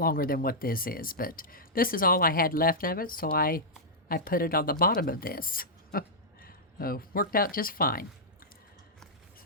than what this is, but this is all I had left of it, so I put it on the bottom of this. So worked out just fine.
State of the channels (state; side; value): normal; both; correlation -0.10